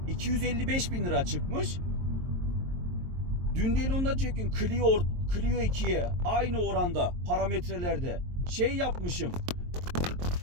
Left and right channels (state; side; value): late; left; 23 ms